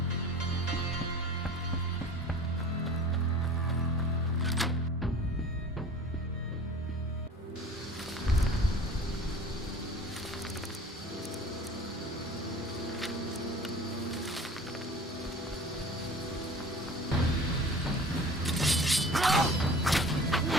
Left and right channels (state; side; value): normal; both; correlation 0.42